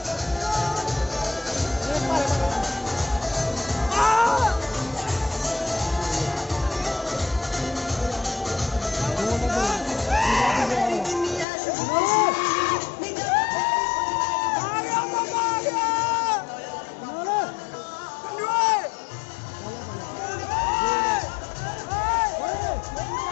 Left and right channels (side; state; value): right; drops out; at 11.5 s